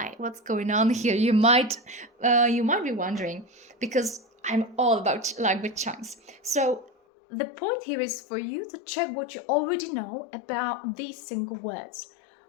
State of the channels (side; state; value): right; drops out; at 6.9 s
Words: What's going on here? You might be wondering, because I'm all about language chunks. So the point here is for you to check what you already know about these single words.